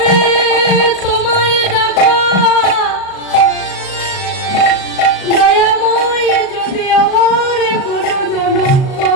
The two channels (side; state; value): right; late; 37 ms